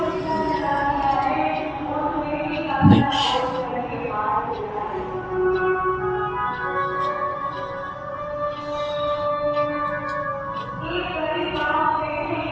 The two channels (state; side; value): identical; both; correlation 1.00